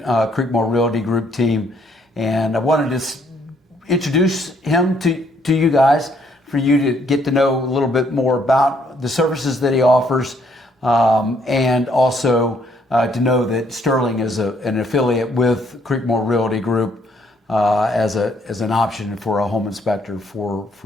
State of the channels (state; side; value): normal; both; correlation 0.68